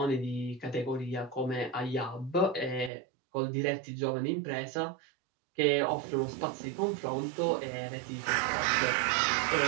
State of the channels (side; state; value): left; drops out; at 2.9 s